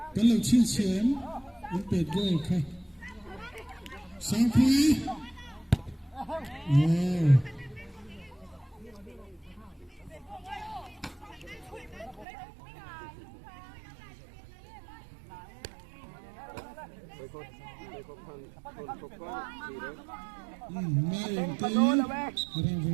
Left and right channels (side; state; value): left; drops out; at 12.2 s